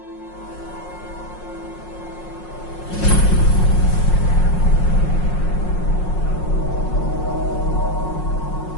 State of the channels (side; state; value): right; late; 5.5 ms